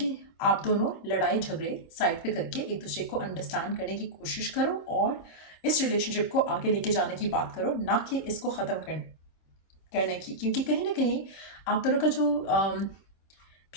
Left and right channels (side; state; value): right; late; 26 ms